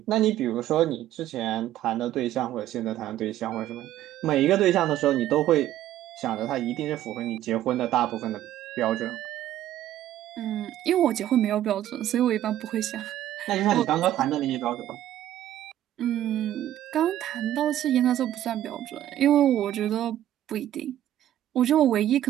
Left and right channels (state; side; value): quieter; left; 12.6 dB